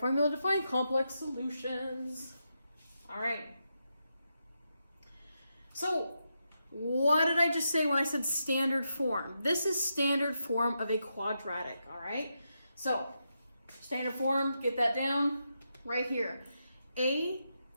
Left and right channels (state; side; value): inverted; both; correlation -0.85